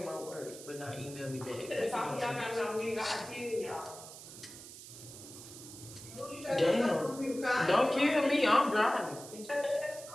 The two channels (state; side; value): noise; right; hiss, 14 dB below the sound